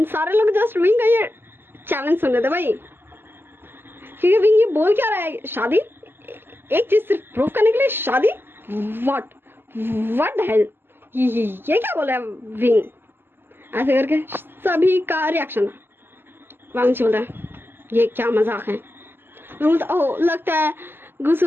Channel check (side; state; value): left; late; 0.10 ms